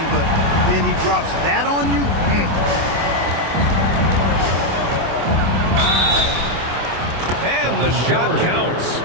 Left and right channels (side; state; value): left; late; 25 ms